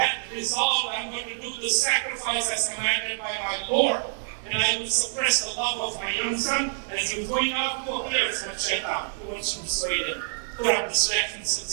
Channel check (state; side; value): silent; left; digital silence